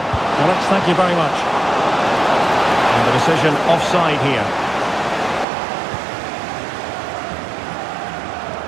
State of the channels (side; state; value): left; drops out; at 5.5 s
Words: Alex, thank you very much. And the decision offside here.